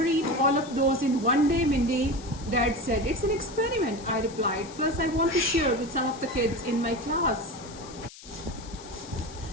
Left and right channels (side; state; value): left; noise; hiss, 18 dB below the sound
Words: eat all of those in one day, Mindy. Dad said, it's an experiment, I replied. Plus, I want to share with some of the kids in my class.